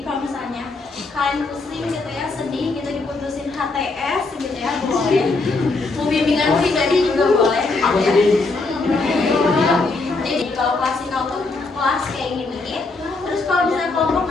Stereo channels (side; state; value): right; quieter; 3.6 dB